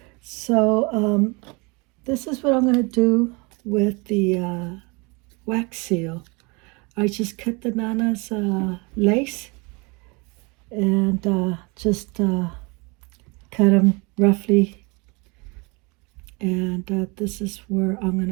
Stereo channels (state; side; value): quieter; left; 28.6 dB